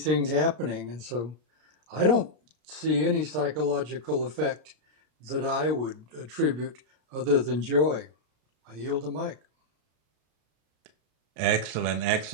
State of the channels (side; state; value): left; late; 33 ms